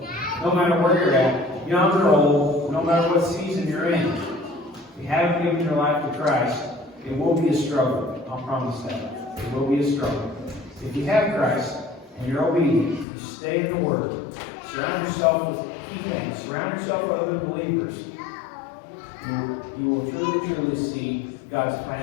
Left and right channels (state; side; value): drops out; right; at 13.1 s